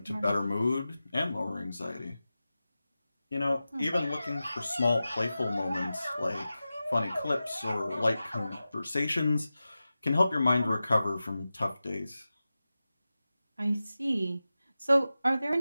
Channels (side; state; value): both; inverted; correlation -0.94